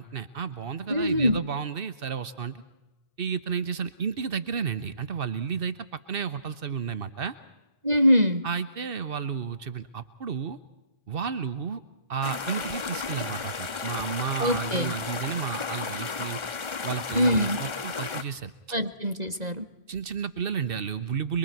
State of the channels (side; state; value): left; late; 1.4 ms